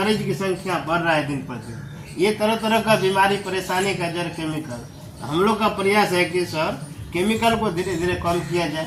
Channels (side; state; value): both; identical; correlation 1.00